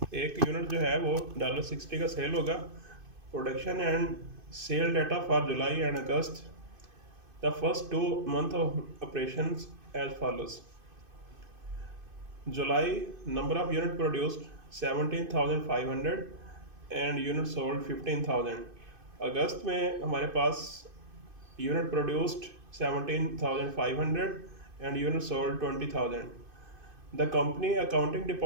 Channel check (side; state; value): left; late; 2.5 ms